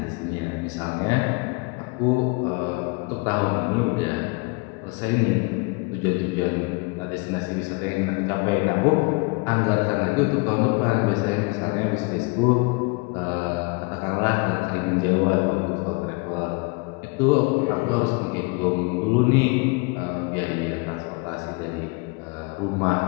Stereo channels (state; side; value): quieter; right; 29.4 dB